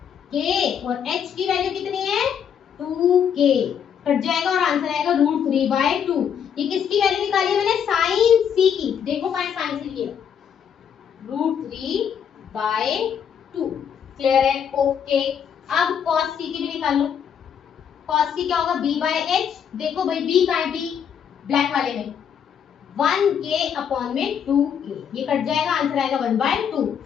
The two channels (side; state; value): right; quieter; 8.1 dB